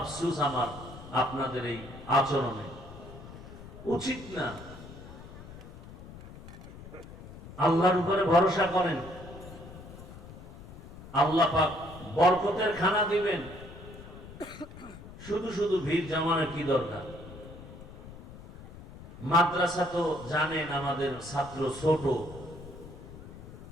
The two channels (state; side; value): noise; left; rumble, 15 dB below the sound